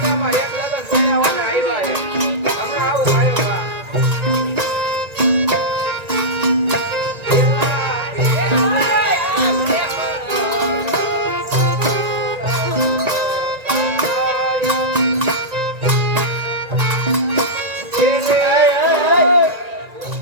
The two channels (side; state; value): left; late; 1.9 ms